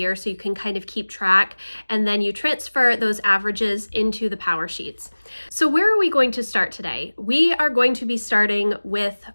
so you can kind of keep track, and then you transfer those averages into the power sheets. So where are we going to start today? We are going to be starting with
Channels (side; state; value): both; inverted; correlation -1.00